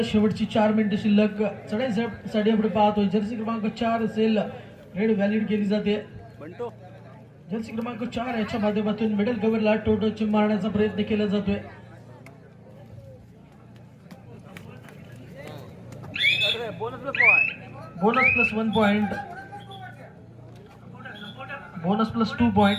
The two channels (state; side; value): identical; both; correlation 1.00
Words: शेवटची 4 मिनिटं शिल्लक. चढाईसाठी आपण पाहतोय जर्सी क्रमांक 4 असेल रेड व्हॅलिड केली जाते. जर्सी क्रमांक 4 याच्या माध्यमातून मिडल कव्हरला टोटल मारण्याचा प्रयत्न केला जातोय. Bonus plus 1 point, bonus plus 2 point.